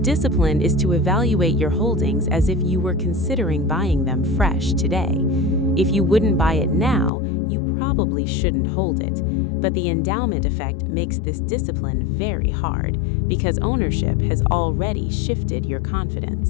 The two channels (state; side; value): drops out; right; at 7.1 s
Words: is to evaluate your holdings as if you were considering buying them fresh today. If you wouldn't buy it now, you probably shouldn't hold it. But the endowment effect makes this discipline very hard because ownership has already shifted your